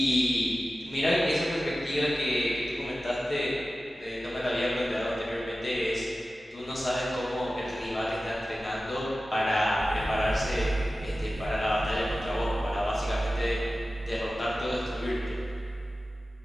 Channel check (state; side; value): normal; both; correlation 0.95